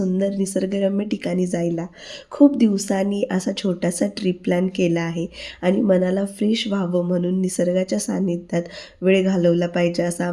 निसर्गरम्य ठिकाणी जायला. खूप दिवसांनी असा छोटासा ट्रिप प्लॅन केला आहे आणि मनाला फ्रेश व्हावं म्हणून निसर्गाच्या सान्निध्यात वेळ घालवला पाहिजे असं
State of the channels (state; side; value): identical; both; correlation 1.00